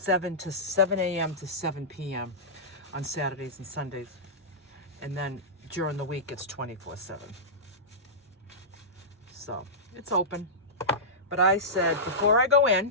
a.m. to 7 p.m. on Saturdays and Sundays. And then during the week it's 24/7. So it's open. But I said, before I go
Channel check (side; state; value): both; normal; correlation -0.14